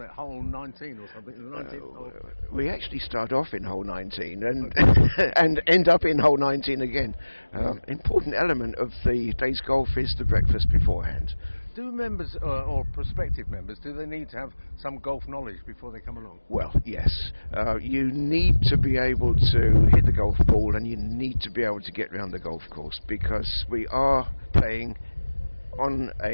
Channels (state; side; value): inverted; both; correlation -1.00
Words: it hole 19 or something. The 19th hole. We actually start off in hole 19 and and end up in hole 19 again. Important element of the day's golf is the breakfast beforehand. Do members or prospective members, do they need to have some golf knowledge before they come along? Well, yes. You need to be able to hit the golf ball, and you need to be able to get around the golf course, because we are playing on